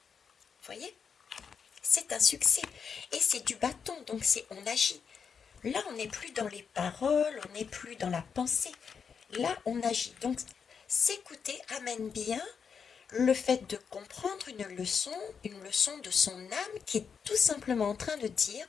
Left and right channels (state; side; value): quieter; right; 6.4 dB